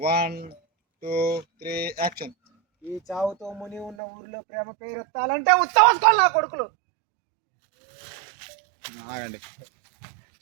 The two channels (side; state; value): left; drops out; at 4.0 s